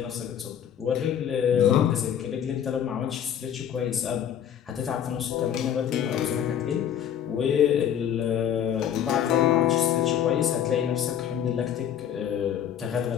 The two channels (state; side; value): quieter; right; 9.4 dB